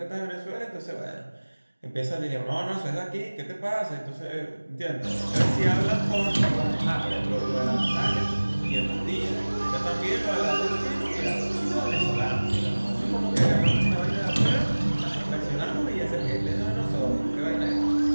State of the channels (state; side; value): inverted; both; correlation -1.00